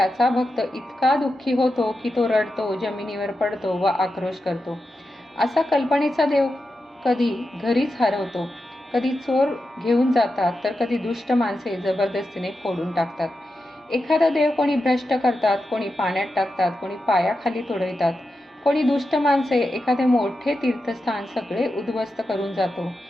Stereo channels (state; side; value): normal; both; correlation 0.89